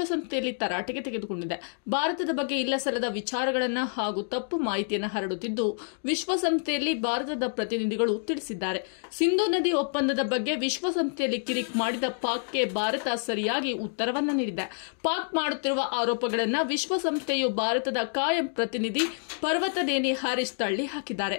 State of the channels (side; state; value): right; silent; 59 dB below the other